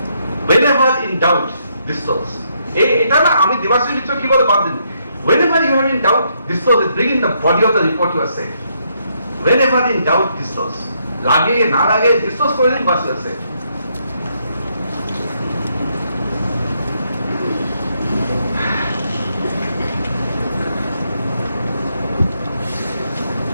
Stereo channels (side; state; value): both; inverted; correlation -0.75